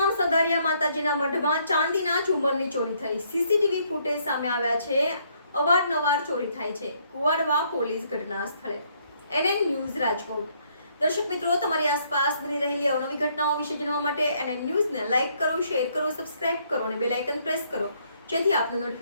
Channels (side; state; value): both; inverted; correlation -0.69